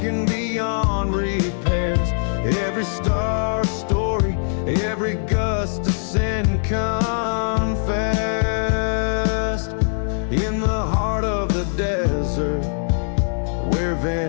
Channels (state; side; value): silent; right; digital silence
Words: beyond repairs. Every star story, every gust of sin confessed in the heart of the desert where